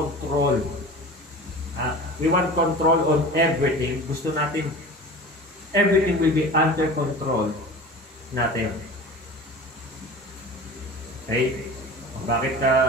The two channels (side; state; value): both; normal; correlation 0.37